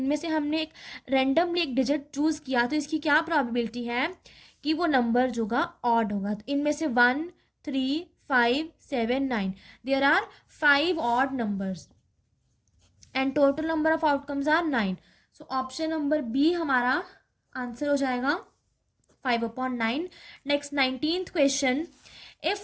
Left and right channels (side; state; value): both; identical; correlation 1.00